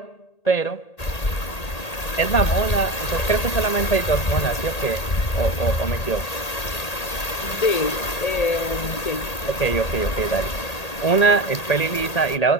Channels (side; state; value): right; late; 1.8 ms